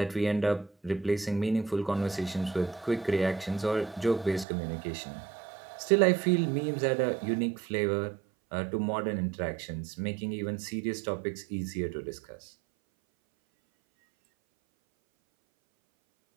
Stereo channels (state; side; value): drops out; left; at 4.5 s